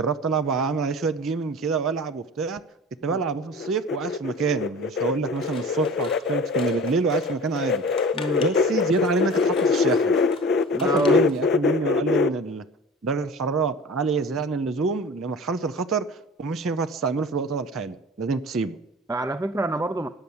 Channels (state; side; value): normal; both; correlation 0.39